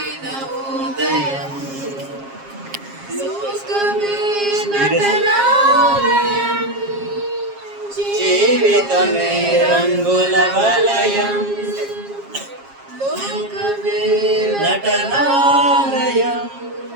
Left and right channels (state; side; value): late; left; 7.4 ms